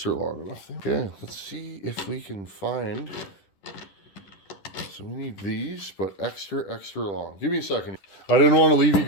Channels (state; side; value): late; right; 10 ms